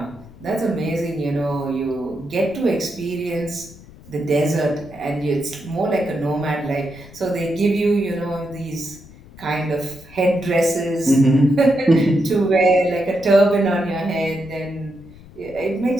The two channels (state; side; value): noise; left; rumble, 21 dB below the sound